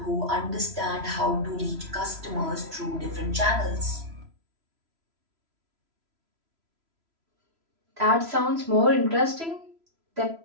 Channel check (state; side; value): late; left; 3.0 ms